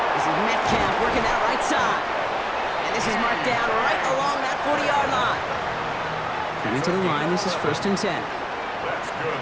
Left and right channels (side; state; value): both; identical; correlation 1.00